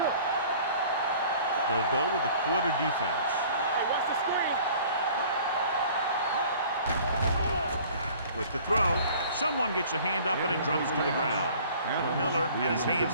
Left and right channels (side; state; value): both; inverted; correlation -0.50